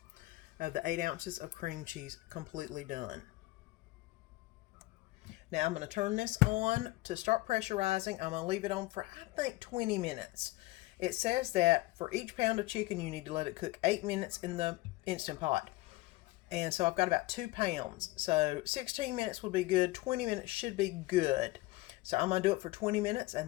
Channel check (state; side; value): quieter; right; 20.1 dB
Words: of the 8 ounces of cream cheese completely done. Now I'm going to turn this on to start pressurizing. I'm going to leave it on for, I think, 20 minutes. It says that for each pound of chicken, you need to let it cook 8 minutes in the Instant Pot. And so I've got about 2 pounds. So 16 minutes would be good. 20 minutes should be good. So I'm going to do it for 20 minutes